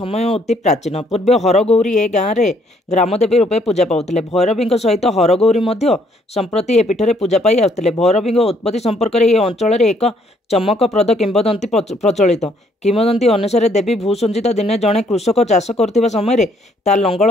अति प्राचीन। पूर्व हरगौरी ए गाँव में ग्रामदेवी रूपे पूजा पाते। भैरवी सहित हरगौरी संप्रति ए पीठ में पूजा पाई आसुले। भैरवी उत्पत्ति संपर्क में अंचल एक चमकप्रद किंवदंती प्रचलित। किंवदंती अनुसार देवी भूसंजिता दिने जड़े कृषक चाष कर समय ता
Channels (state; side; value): normal; both; correlation 0.66